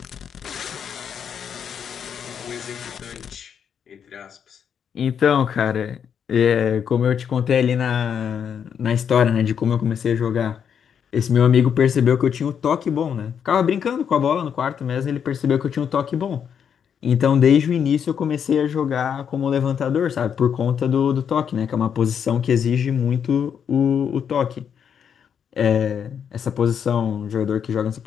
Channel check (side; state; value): right; quieter; 7.8 dB